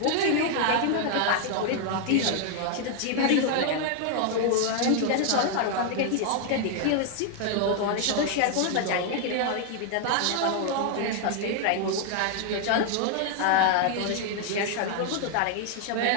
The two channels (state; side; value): different; both; correlation 0.00